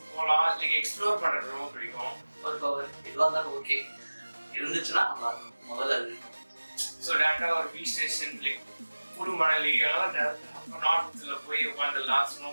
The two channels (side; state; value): both; inverted; correlation -1.00